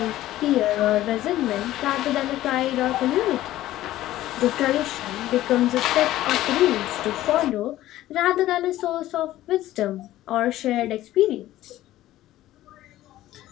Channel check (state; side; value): quieter; right; 14.8 dB